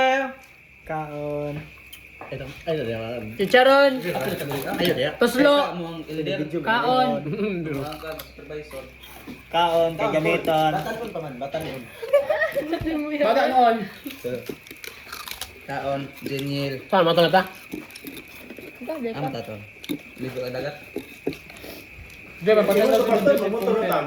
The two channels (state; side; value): identical; both; correlation 1.00